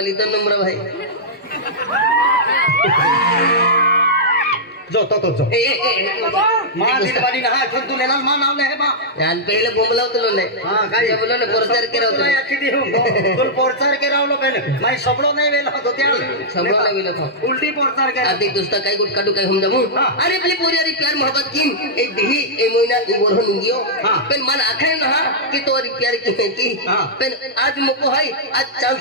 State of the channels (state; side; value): normal; both; correlation -0.10